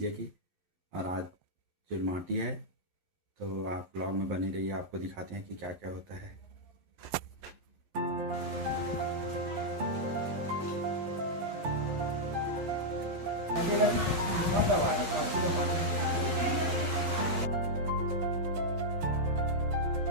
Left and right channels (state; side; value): late; left; 11 ms